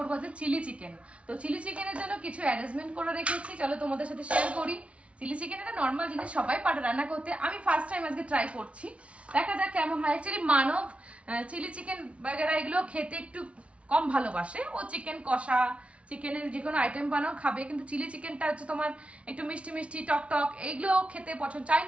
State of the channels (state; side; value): late; left; 0.062 ms